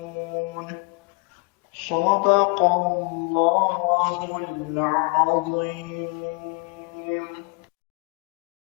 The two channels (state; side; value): quieter; right; 33.7 dB